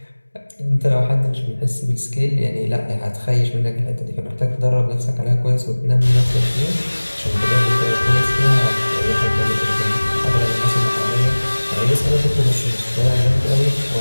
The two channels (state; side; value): inverted; both; correlation -1.00